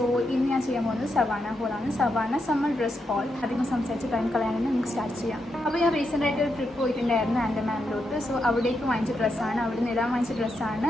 ഇന്ന് ഞാൻ ചെയ്യാൻ പോകുന്നത് സവാന ഹോളാണ്. Savana summer dress haul. അധികം സംസാരിച്ച് ടൈം കളയാനാണ് നമുക്ക് സ്റ്റാർട്ട് ചെയ്യാം. അപ്പോൾ ഞാൻ റീസെൻ്റ് ആയിട്ട് ഒരു ട്രിപ്പ് പോയിട്ടുണ്ടായിരുന്നു ആൻഡമാനിലോട്ട്. സോ അവിടേക്ക് വാങ്ങിച്ച ഡ്രസ്സാണ്, അവിടെ നിന്ന് ഇടാൻ വാങ്ങിച്ച ഡ്രസ്സാണ്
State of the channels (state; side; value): normal; both; correlation 0.83